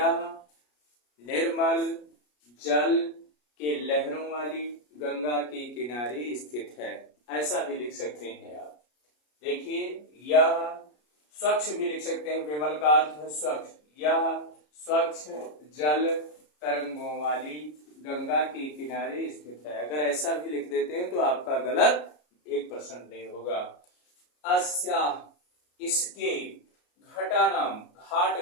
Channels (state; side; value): late; right; 33 ms